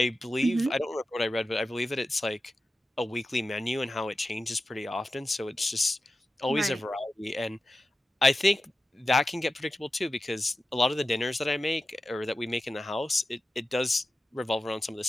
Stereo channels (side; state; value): both; normal; correlation 0.92